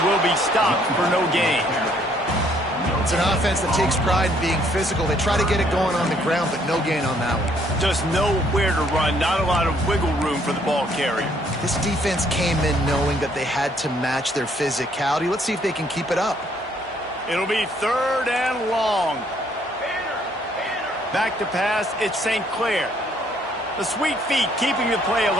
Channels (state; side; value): normal; both; correlation 0.66